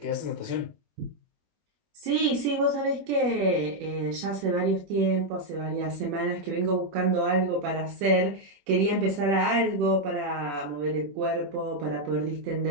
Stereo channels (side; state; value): left; late; 21 ms